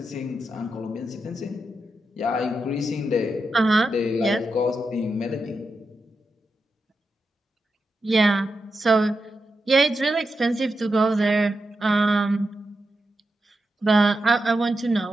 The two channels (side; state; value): both; normal; correlation 0.88